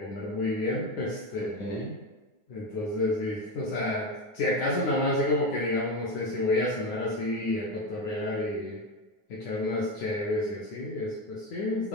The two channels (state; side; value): late; right; 9.6 ms